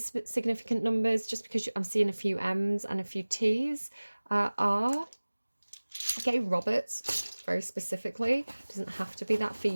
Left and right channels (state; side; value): inverted; both; correlation -1.00